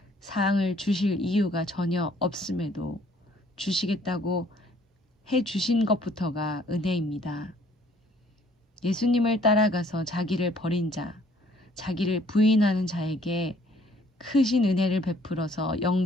사항을 주실 이유가 전혀 없음에도 주시겠다고 해 주신 것부터가 은혜입니다. 예수님을 따라가서 자기를 버린 자, 자기를 부인하는 자에게 크신 은혜를 베풀어서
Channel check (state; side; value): normal; both; correlation 0.61